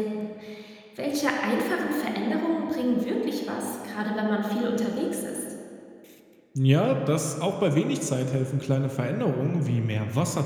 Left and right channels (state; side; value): identical; both; correlation 1.00